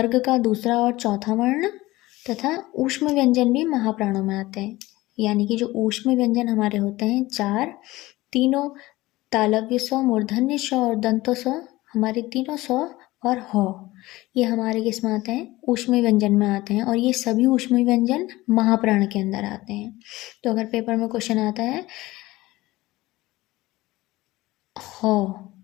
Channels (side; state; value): right; quieter; 18.7 dB